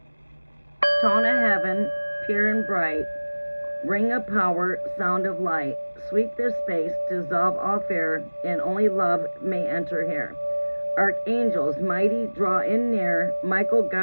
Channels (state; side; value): inverted; both; correlation -1.00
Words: Tone of heaven, pure and bright, ring of power, sound of light, sweep this space, dissolve all fear, and only love may enter here. Archangels, mighty, draw in near, Michael,